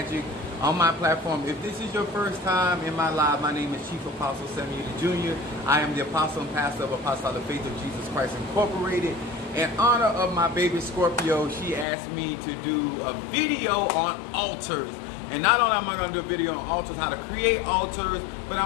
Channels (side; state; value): right; drops out; at 11.9 s